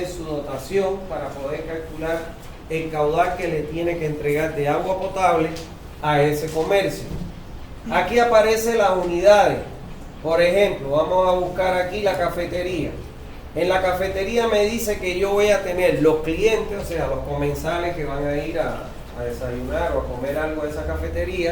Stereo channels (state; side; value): identical; both; correlation 1.00